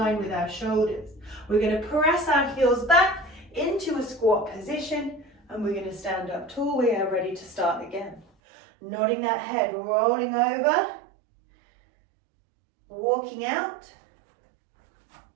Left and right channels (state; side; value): drops out; left; at 8.2 s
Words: with our shoulders. We're going to press our heels back into a squat position, and we're going to stand up tall. We are ready to start again. Nodding that head, rolling over, walking out,